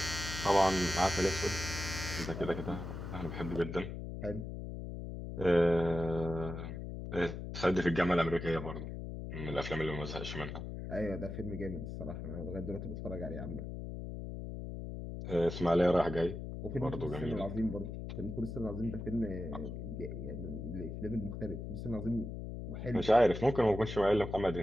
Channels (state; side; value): noise; left; hum, 7 dB below the sound